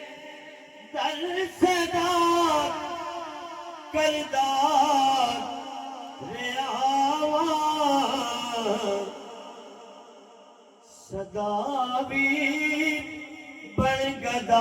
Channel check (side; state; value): both; identical; correlation 1.00